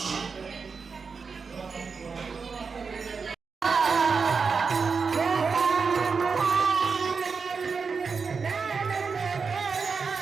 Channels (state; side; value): quieter; left; 5.2 dB